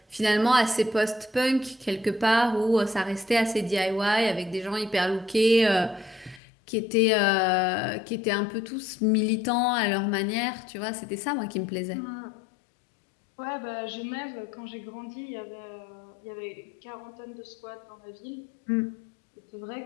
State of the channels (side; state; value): right; drops out; at 6.4 s